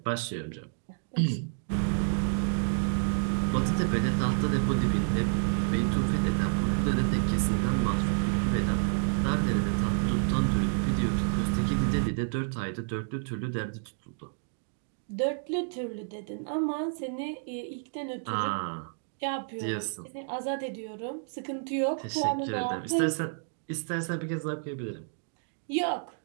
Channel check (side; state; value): left; silent; digital silence